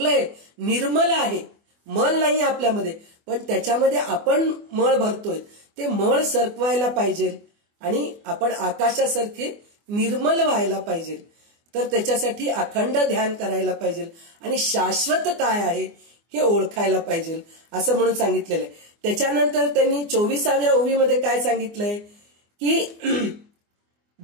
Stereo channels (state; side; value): late; left; 24 ms